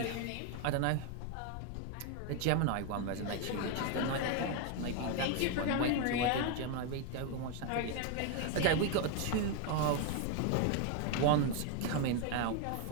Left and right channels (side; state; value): both; different; correlation 0.01